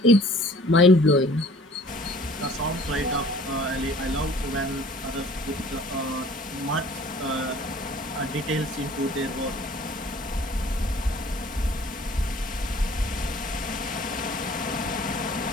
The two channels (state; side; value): normal; both; correlation 0.52